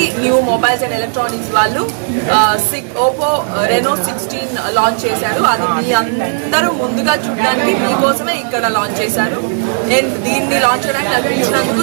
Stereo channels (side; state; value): left; silent; digital silence